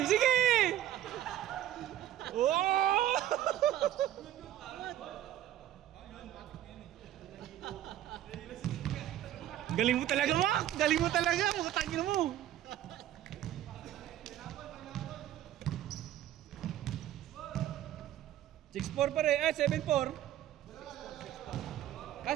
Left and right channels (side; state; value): left; quieter; 12.3 dB